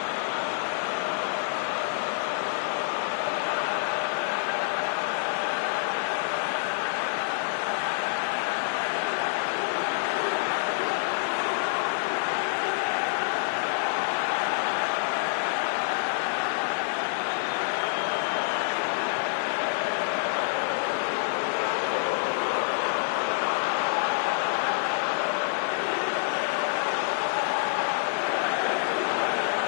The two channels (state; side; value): silent; right; digital silence